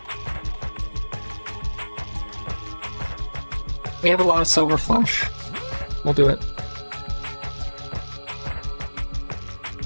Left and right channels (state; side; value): inverted; both; correlation -1.00